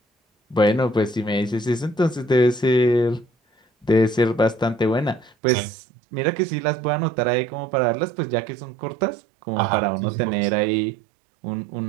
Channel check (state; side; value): drops out; left; at 5.4 s